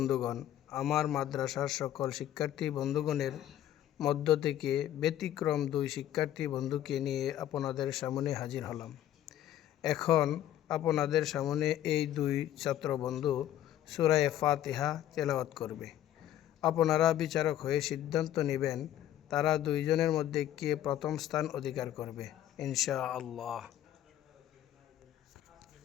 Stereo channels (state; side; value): quieter; right; 12.2 dB